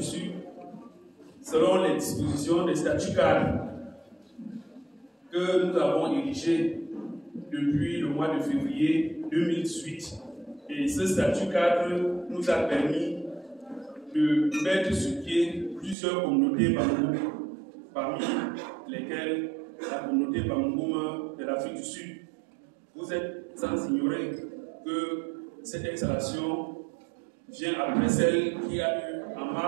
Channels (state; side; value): drops out; left; at 16.0 s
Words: Sud selon les dispositions des statuts cadres que nous avons érigés depuis le mois de février 2018. Et ce statut cadre nous a permis de mettre sur pied plusieurs communautés Bamungún, parmi lesquelles la communauté Bamungún de l'Afrique du Sud. Vous êtes sans ignorer que cette installation vient après celle qui a eu en